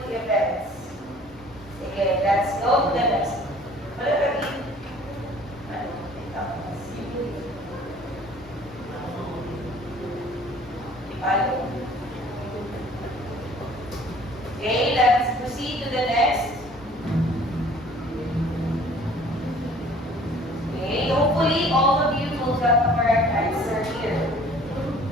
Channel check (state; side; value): normal; both; correlation 0.52